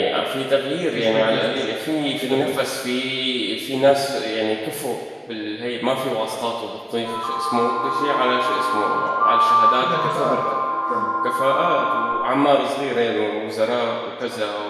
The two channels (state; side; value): identical; both; correlation 1.00